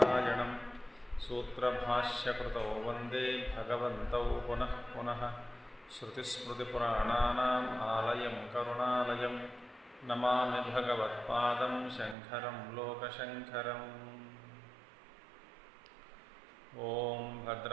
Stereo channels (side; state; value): left; drops out; at 12.2 s